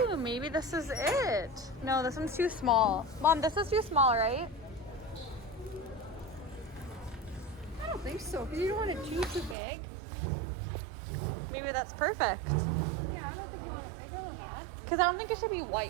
maybe this is it. No, this one's too small. Mom, this is too small, right? I don't think so, because you don't want it too big. Maybe that's perfect. Yeah, I don't think you want it bigger than that. Because I don't think it should be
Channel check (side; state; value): left; drops out; at 9.6 s